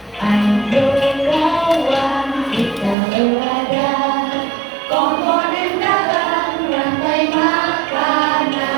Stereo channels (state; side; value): drops out; left; at 3.0 s